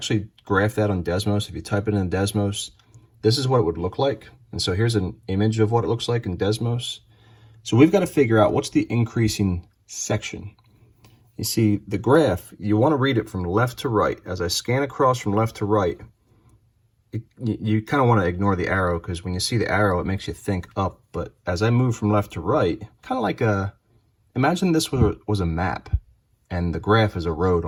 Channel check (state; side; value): identical; both; correlation 1.00